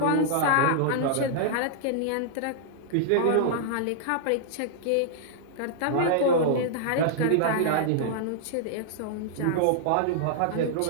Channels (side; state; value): both; different; correlation -0.01